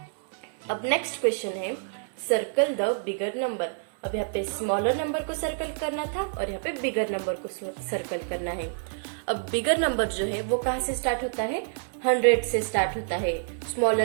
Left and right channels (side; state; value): left; silent; 60 dB below the other